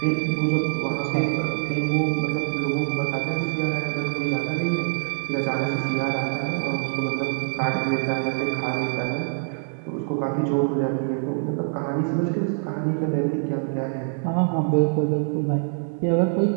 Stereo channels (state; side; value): silent; left; 62 dB below the other